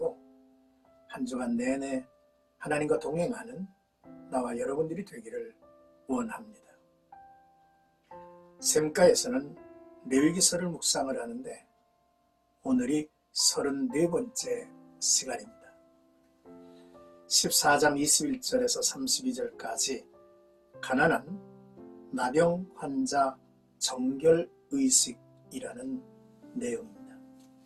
한 주간 내내 하나님과 동행하는 나와 여러분들이 되기를 원합니다. 샘가에서는 레위기서를 묵상을 하는데 오늘이 34번째 시간입니다. 14장 21절에서 32절까지 가난한 나병 환자 정결의식이라는 내용입니다.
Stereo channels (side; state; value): both; identical; correlation 1.00